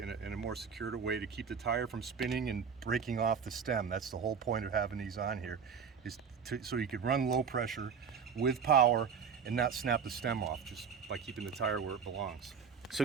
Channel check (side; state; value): left; quieter; 6.5 dB